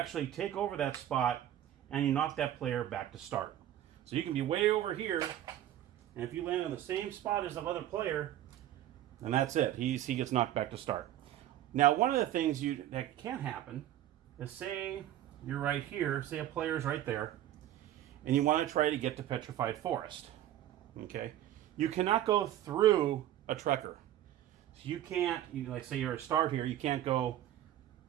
take over that spot and you knock that player back to start. So you can be way over here, and if you land on the same spot as the other player, And that's it. He gets knocked back to start. Now, one of the things that can happen is, say you're right here, say a player's right there, and you want to try to get to Petrified Forest. Okay? You cannot go through a Trekker. So you can't, like say you're a start here, you can't go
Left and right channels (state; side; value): quieter; left; 12.5 dB